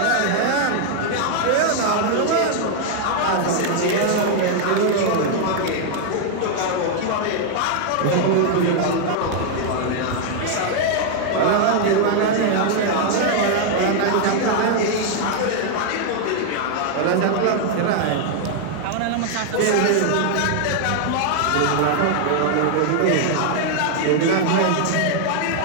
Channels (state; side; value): different; both; correlation 0.00